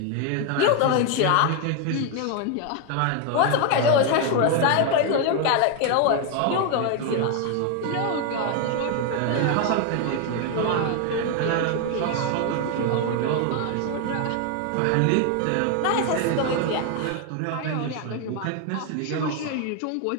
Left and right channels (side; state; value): both; different; correlation 0.01